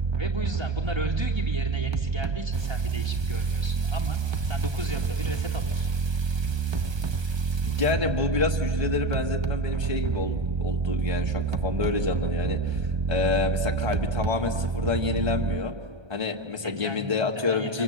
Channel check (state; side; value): late; left; 1.3 ms